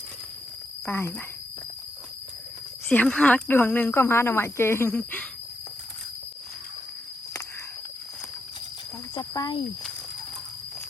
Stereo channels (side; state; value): both; normal; correlation 0.82